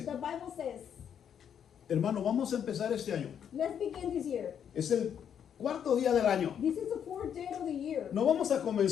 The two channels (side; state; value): right; quieter; 8.5 dB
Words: Hermano, vamos a empezar este año. Es el cuarto día del año. No vamos a